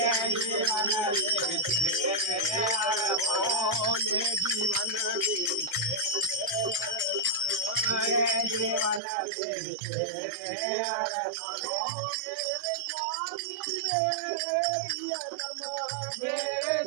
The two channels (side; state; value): left; drops out; at 9.0 s